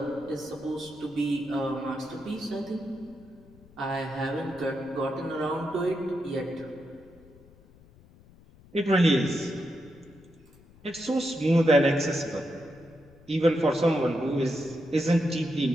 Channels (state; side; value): noise; left; rumble, 25 dB below the sound